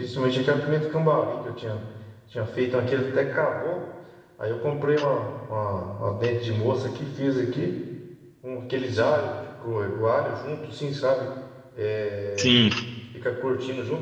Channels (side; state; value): both; identical; correlation 1.00